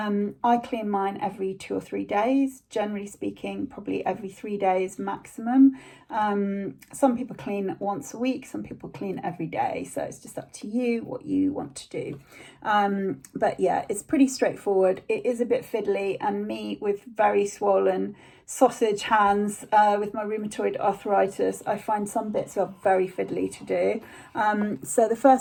clean mine every 2 or 3 days, generally speaking, probably every 3 days maximum. Some people clean once a week, some people clean every day, so it's just up to you what you want to do. But yeah, it's pretty straightforward. It is a bit fiddly, and me with very swollen sausage hands with my rheumatoid arthritis, I find some bits are very fiddly to do. So the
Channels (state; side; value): identical; both; correlation 1.00